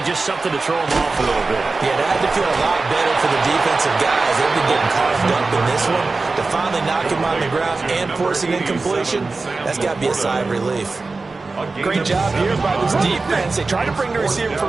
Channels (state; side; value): quieter; left; 3.8 dB